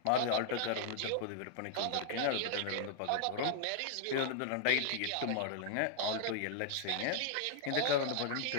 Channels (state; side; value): different; both; correlation -0.01